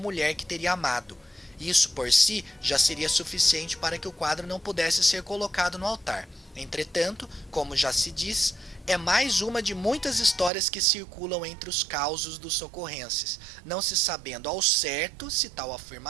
que teria amado. Isso por si já seria suficiente para que o quadro não pudesse ser colocado no altar. Entretanto, como já se diz, é mais uma de muitas histórias que circulam entre os causos dos socorrenses, não se sabendo ao certo se tal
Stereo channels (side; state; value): left; drops out; at 10.5 s